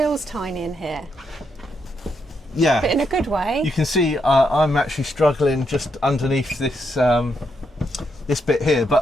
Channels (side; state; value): both; normal; correlation 0.79